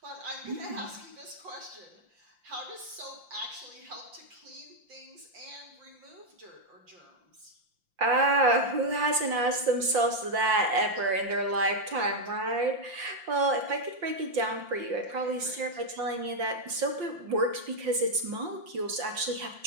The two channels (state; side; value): late; left; 5.7 ms